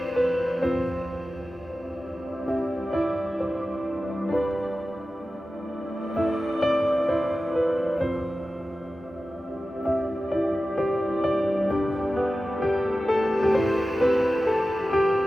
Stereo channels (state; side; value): normal; both; correlation 0.95